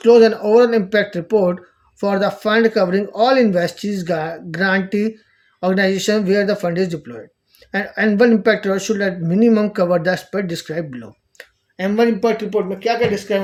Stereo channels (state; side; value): identical; both; correlation 1.00